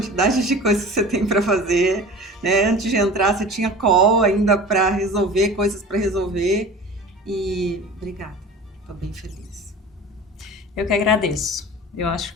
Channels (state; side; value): normal; both; correlation 0.38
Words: de coisas que você tem para fazer, né? Antes de entrar, você tinha call ainda para resolver, coisas para resolver. E obrigada, estou bem feliz. Eu que agradeço. Eu acho